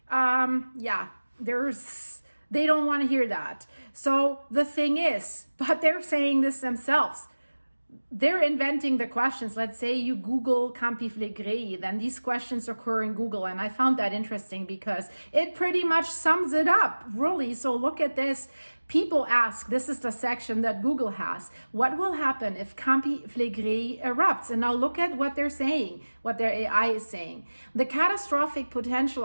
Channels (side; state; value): both; inverted; correlation -1.00